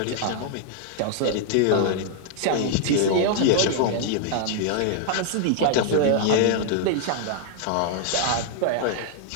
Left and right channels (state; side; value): different; both; correlation -0.01